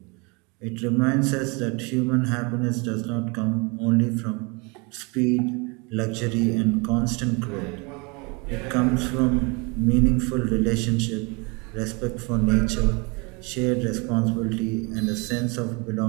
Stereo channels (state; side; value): quieter; left; 29.8 dB